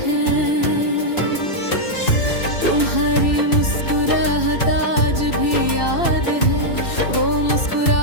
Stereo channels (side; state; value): right; late; 2.7 ms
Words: हैं। तुम्हारी मुस्कुराहट आज भी याद है, वो